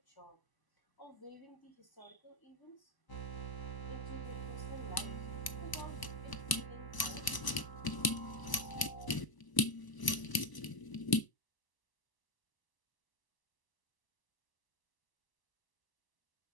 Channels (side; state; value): right; late; 1.0 ms